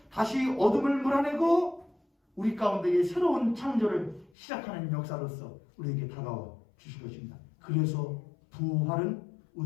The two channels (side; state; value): right; drops out; at 4.3 s